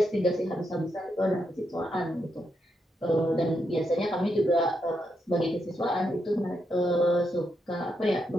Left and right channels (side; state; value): both; normal; correlation 0.82